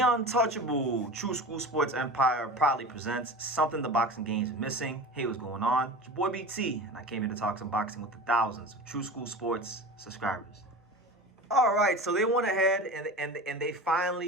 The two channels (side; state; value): both; normal; correlation 0.33